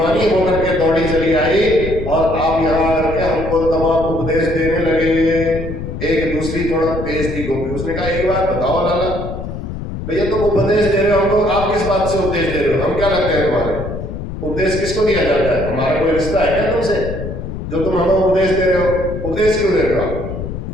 होकर के दौड़ी चली आई और आप यहाँ आकर के हमको तमाम उपदेश देने लगे। एक दूसरी थोड़ा तेज थी गोपी, उसने कहा एक बात बताओ लाला भैया, तुम उपदेश दे रहे हो हमको, आप किस बात से उपदेश दे रहे हो? हम क्या लगते हैं तुम्हारे? उपदेश किसको दिया जाता है? हमारा कोई रिश्ता है क्या तुमसे जो तुम हमें उपदेश दे रहे हो? उपदेश क्यों दे रहे हो?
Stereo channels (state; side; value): noise; left; rumble, 7 dB below the sound